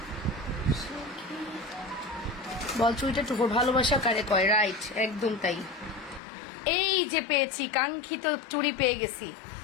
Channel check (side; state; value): right; drops out; at 6.2 s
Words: বল চুড়িটা টুকুর ভালোবাসা কারে কয়, রাইট, একদম তাই। এই যে পেয়েছি, কাঙ্ক্ষিত চুড়ি